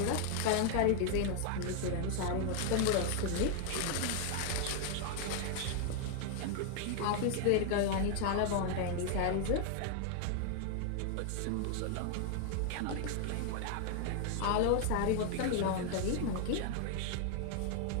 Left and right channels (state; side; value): different; both; correlation 0.00